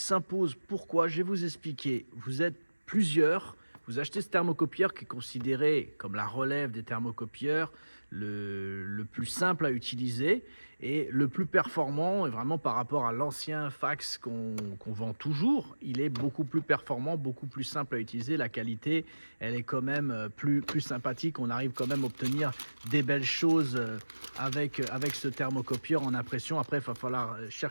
Pourquoi? Je vais vous expliquer. Vous êtes plusieurs, vous achetez ce thermocopieur qui est considéré comme la relève des thermocopieurs, le plus simple à utiliser et le plus performant. Et vraiment par rapport à l'ancien fax qu'on vend toujours, il est beaucoup plus performant, beaucoup plus simple à utiliser. La qualité, elle est quand même plus sympathique. On arrive quand même à obtenir des belles choses avec ce thermocopieur en impression. Après, il va falloir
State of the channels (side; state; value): both; inverted; correlation -1.00